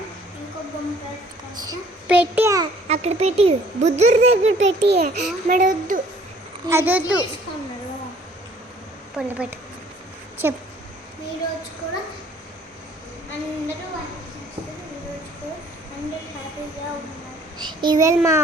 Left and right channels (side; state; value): both; normal; correlation 0.57